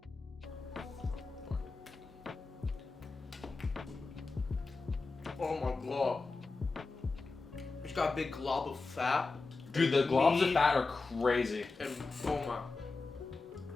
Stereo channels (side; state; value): right; quieter; 3.9 dB